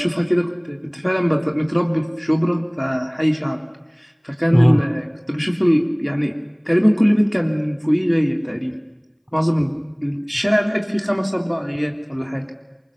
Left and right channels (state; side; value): identical; both; correlation 1.00